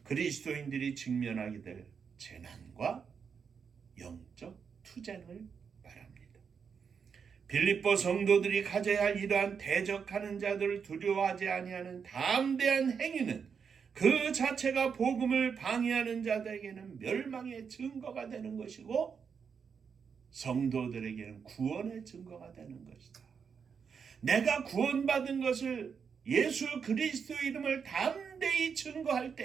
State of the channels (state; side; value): quieter; left; 6.4 dB